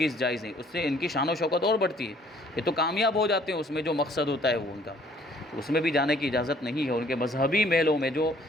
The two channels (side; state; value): both; normal; correlation 0.60